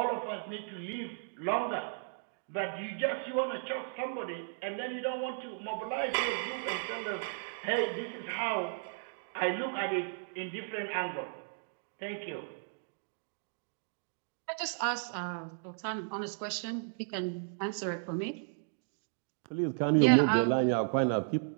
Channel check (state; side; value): silent; left; digital silence